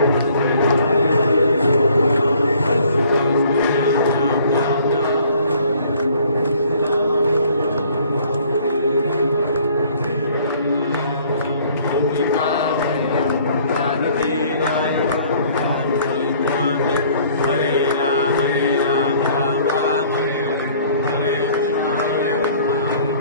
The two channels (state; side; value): inverted; both; correlation -0.57